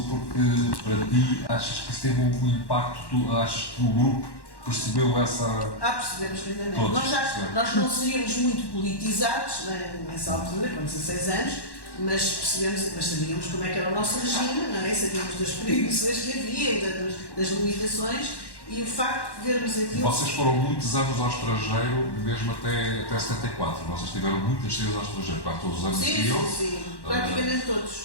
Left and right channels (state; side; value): late; right; 1.1 ms